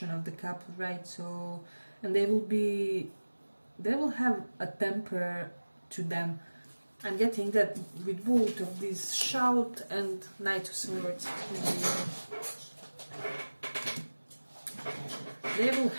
of the couple, right? So, and they will have a temper to them. I'm getting that with both of these, shout and Knight of Swords. They will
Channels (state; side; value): inverted; both; correlation -1.00